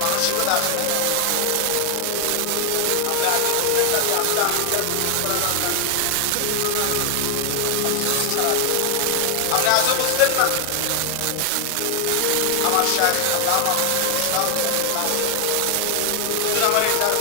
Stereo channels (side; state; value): both; different; correlation 0.00